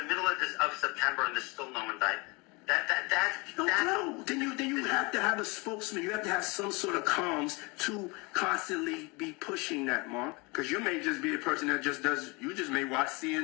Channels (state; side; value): quieter; right; 27.4 dB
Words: middle of September and there's still no one died. No. Then you have to have a spokesman. You have to have some sort of comms to constantly be pushing that, Mark. Because you may just be a person that you just may watch